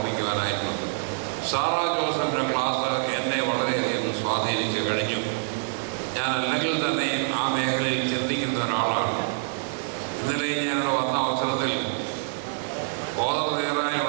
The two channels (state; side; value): silent; left; 61 dB below the other